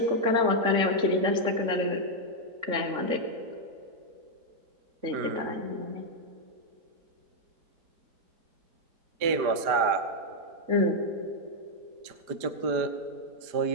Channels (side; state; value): left; late; 4.9 ms